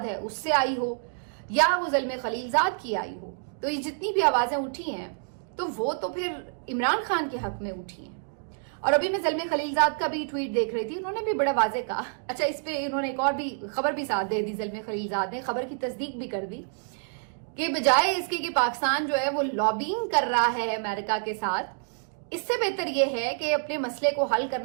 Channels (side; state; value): left; silent; digital silence